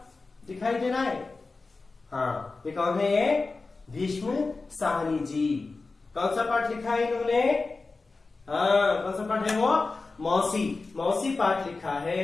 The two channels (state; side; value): quieter; right; 3.8 dB